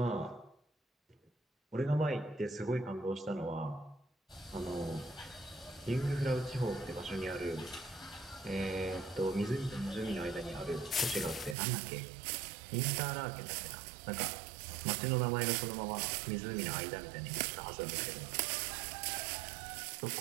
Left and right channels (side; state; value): left; drops out; at 11.6 s